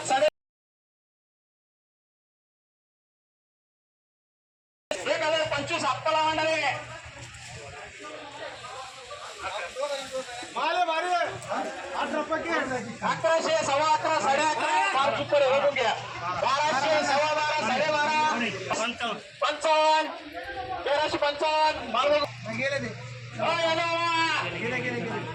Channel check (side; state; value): both; identical; correlation 1.00